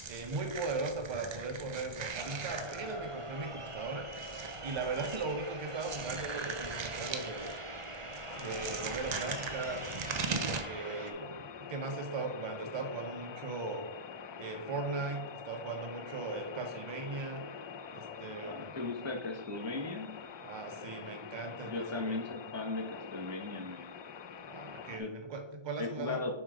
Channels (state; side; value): late; left; 1.3 ms